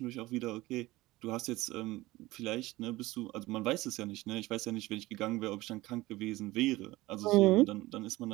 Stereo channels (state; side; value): quieter; left; 19.0 dB